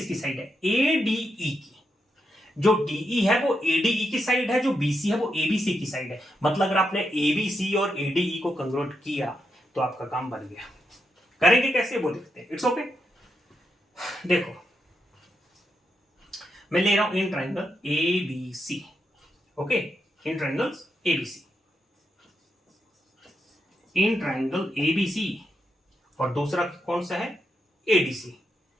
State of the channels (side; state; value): both; normal; correlation 0.83